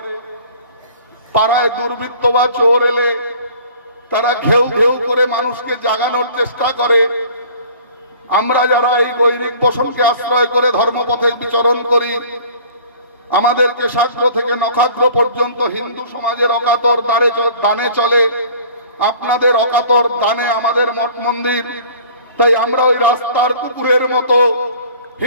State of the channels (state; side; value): inverted; both; correlation -0.48